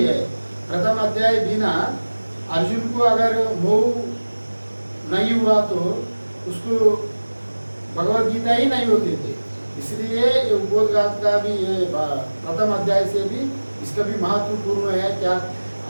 प्रथम अध्याय बिना अर्जुन को अगर मोह नहीं हुआ तो उसको भगवद गीता ही नहीं होती थी। इसलिए ये उपोद्घात का भी ये प्रथम अध्याय से भी इसका भी महत्वपूर्ण है। क्या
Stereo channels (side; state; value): both; inverted; correlation -1.00